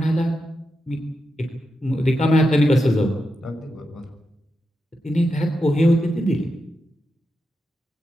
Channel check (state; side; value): normal; both; correlation 0.87